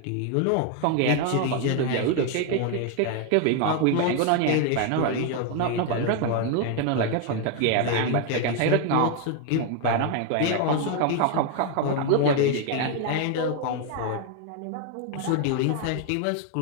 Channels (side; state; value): both; different; correlation 0.01